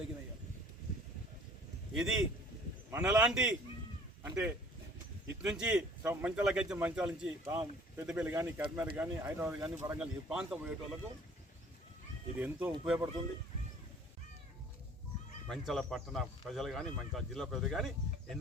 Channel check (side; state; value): both; normal; correlation 0.51